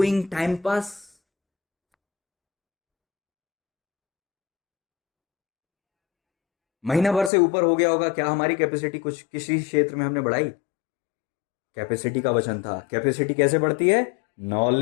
time pass. महीना भर से ऊपर हो गया होगा, क्या हमारी कैपेसिटी कुछ किसी क्षेत्र में हमने बढ़ाई? कैपेसिटी का वचन था। कैपेसिटी कैसे बढ़ती है?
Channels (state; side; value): drops out; right; at 7.3 s